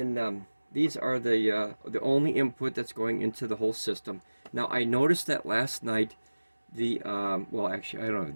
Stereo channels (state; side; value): inverted; both; correlation -1.00